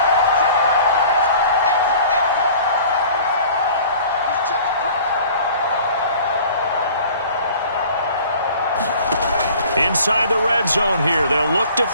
Inside the red zone here, they'll look to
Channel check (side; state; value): both; inverted; correlation -0.48